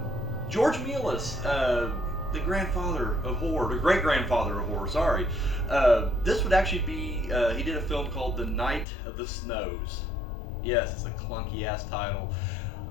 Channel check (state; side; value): drops out; right; at 8.8 s